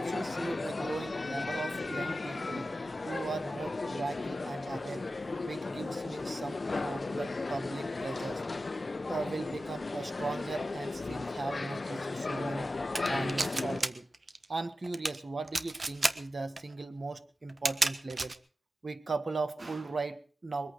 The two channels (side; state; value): both; normal; correlation 0.93